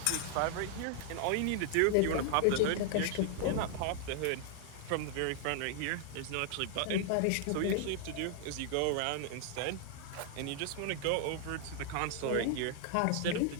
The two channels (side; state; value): both; different; correlation 0.00